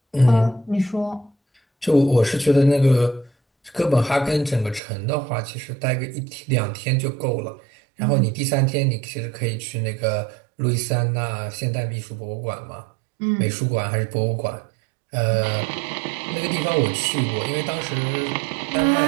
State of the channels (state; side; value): drops out; left; at 4.8 s